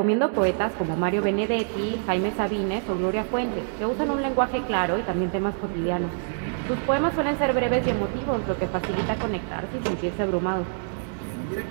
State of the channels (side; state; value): left; silent; digital silence